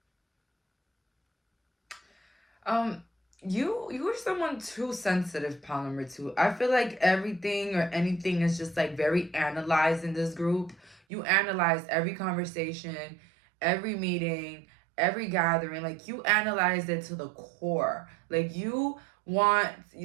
You're someone too sensitive, pal number 2. I feel like everything or anything is just like very analyzed in this group. You analyze every conversation, every meeting, every gathering. Like you analyze it to the core. Like you want,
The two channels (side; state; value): left; drops out; at 11.0 s